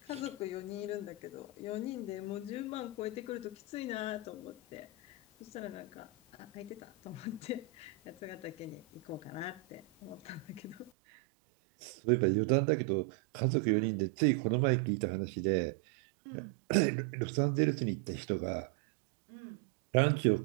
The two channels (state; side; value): drops out; left; at 10.9 s